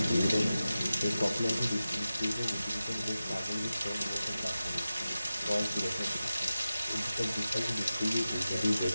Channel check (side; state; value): both; inverted; correlation -0.93